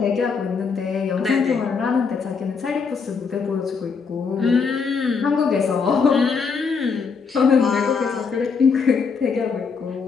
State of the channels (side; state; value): right; quieter; 5.4 dB